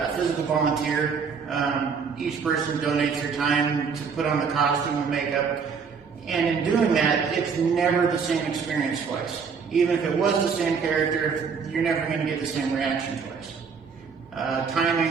a physical volunteer. Each person donates their time to put on the costume and makeup. And in doing that, it's never the same experience twice. Even if it was the same character, you're never going to get the same reaction twice.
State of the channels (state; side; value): quieter; left; 5.9 dB